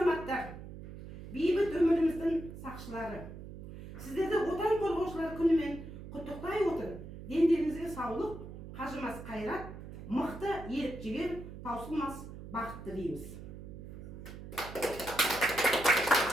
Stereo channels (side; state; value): right; noise; hum, 12 dB below the sound